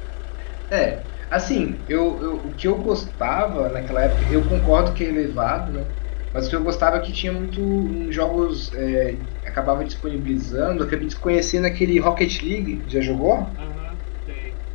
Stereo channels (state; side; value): silent; right; digital silence